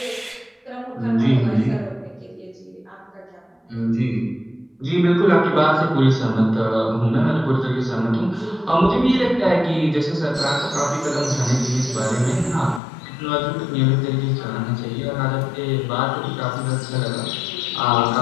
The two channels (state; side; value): drops out; right; at 12.8 s